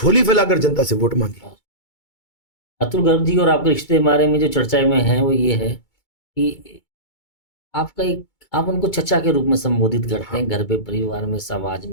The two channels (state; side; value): late; right; 2.2 ms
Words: फैलाकर जनता से वोट मांगी। अतुल गर्ग जी और आपके रिश्ते बारे में जो चर्चा में है वो ये है कि आप उनको चचा के रूप में संबोधित करते हैं, घर पे, परिवार में, समाज